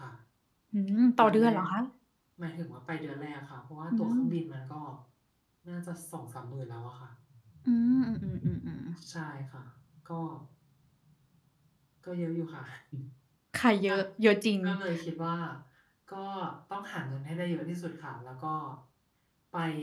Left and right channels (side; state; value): both; identical; correlation 1.00